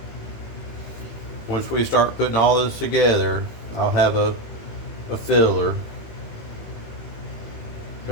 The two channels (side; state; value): right; late; 18 ms